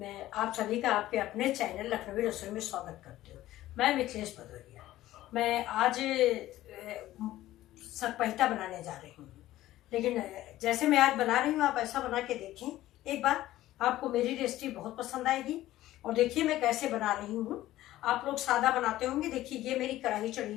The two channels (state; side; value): quieter; right; 15.0 dB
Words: आप सभी का आपके अपने चैनल लखनवी रसोई में स्वागत करती हूँ। मैं मिथिलेश भदौरिया। मैं आज सकपैता बनाने जा रही हूँ, लेकिन जैसे मैं आज बना रही हूँ आप ऐसा बना के देखें एक बार। आपको मेरी रेसिपी बहुत पसंद आएगी। और देखिए मैं कैसे बना रही हूँ। आप लोग सादा बनाते होंगे। देखिए ये मेरी कढ़ाई